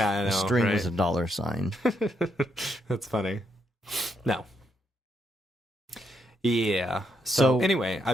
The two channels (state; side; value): normal; both; correlation 0.78